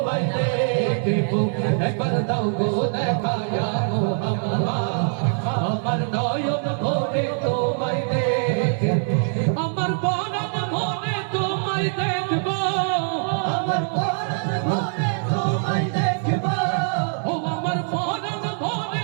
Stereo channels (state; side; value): silent; left; digital silence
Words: দেখবো, একবার দাও গো দেখায়া মোহাম্মদ। আমার নয়ন ভরে তোমায় দেখবো, আমার পরাণ ভরে তোমায় দেখবো, আমার পরাণ ভরে তোমায় দেখবো, ও আমার পরাণ